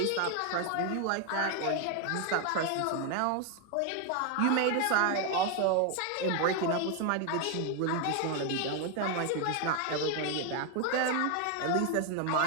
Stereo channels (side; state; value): both; different; correlation 0.01